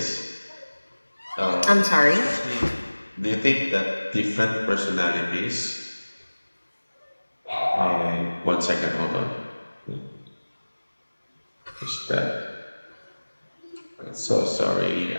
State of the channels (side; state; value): both; inverted; correlation -1.00